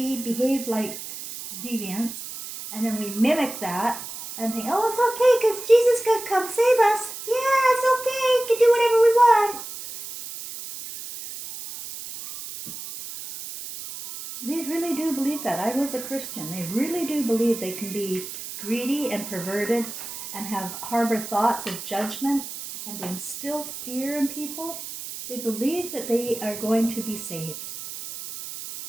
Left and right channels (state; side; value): noise; right; hiss, 10 dB below the sound